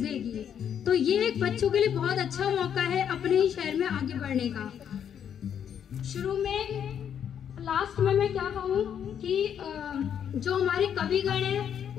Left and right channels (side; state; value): right; quieter; 8.7 dB